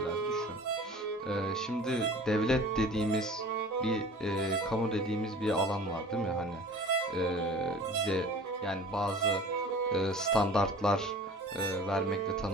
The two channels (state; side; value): normal; both; correlation 0.43